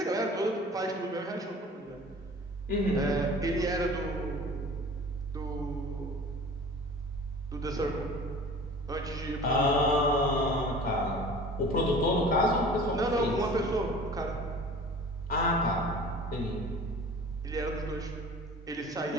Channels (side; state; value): both; normal; correlation 0.43